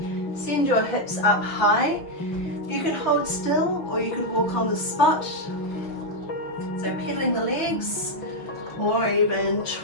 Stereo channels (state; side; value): late; right; 6.0 ms